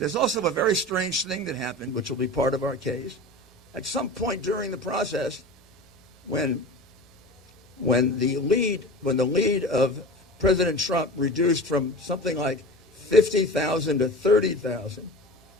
also a very strange thing that happened, which will be part of our case. At some point during the process, when the lead of President Trump reduced from something like 50,000 to 30,000,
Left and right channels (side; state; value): both; normal; correlation 0.33